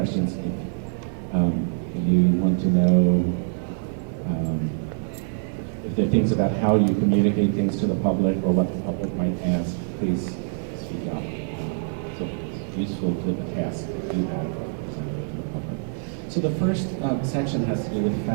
if you want to know if there are things about how you communicate things to the public or what the public might ask, please speak up. So it's useful to the task to do that. So the first section has to do with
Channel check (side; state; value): left; silent; 62 dB below the other